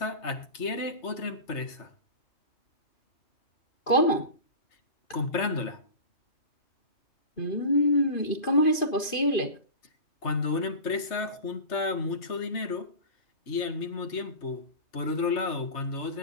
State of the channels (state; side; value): late; right; 2.5 ms